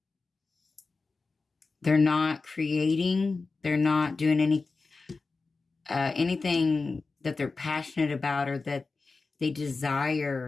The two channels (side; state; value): right; quieter; 4.0 dB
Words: They're not creating. They're not doing anything that they're passionate about or that they